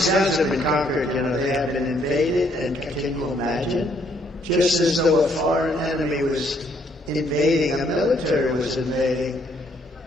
towns have been conquered, you know. They have been invaded, and can you imagine? Just as though a foreign enemy was invading, a military was invading,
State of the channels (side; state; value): both; normal; correlation 0.68